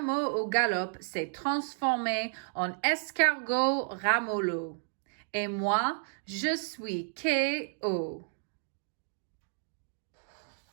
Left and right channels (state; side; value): silent; left; digital silence